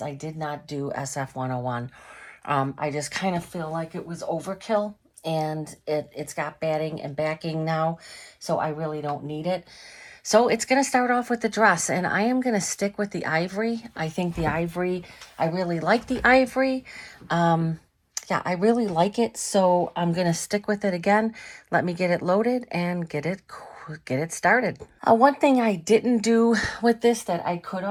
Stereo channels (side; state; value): both; identical; correlation 1.00